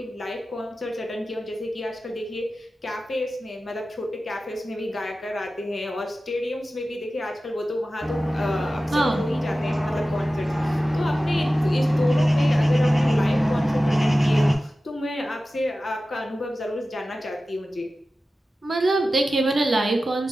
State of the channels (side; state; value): both; normal; correlation 0.95